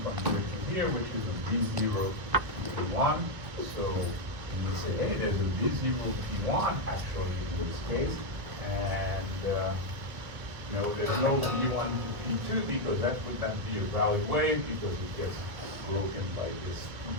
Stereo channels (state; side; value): late; left; 1.6 ms